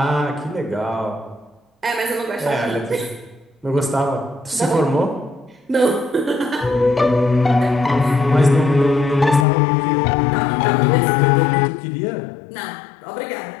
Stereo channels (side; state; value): right; drops out; at 9.5 s